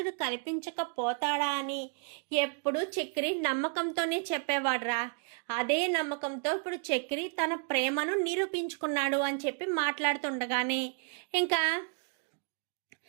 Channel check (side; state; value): left; quieter; 39.1 dB